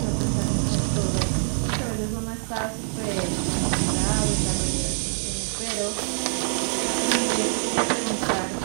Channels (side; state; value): left; silent; 62 dB below the other